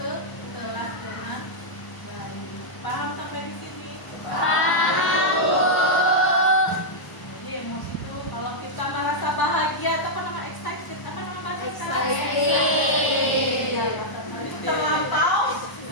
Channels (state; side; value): late; right; 1.0 ms